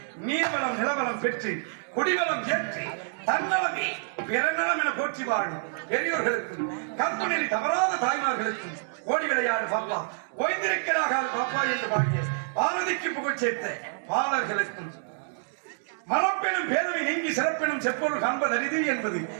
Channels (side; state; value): left; silent; digital silence